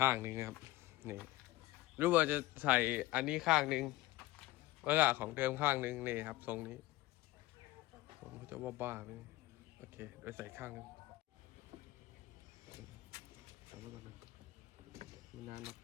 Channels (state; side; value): quieter; right; 18.1 dB